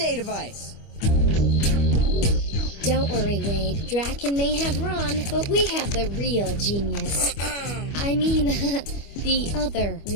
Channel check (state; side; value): late; right; 25 ms